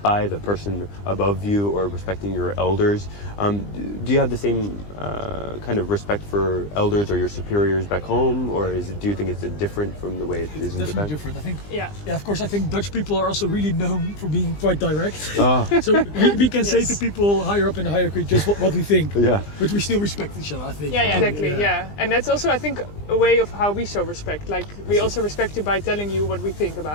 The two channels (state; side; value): late; right; 20 ms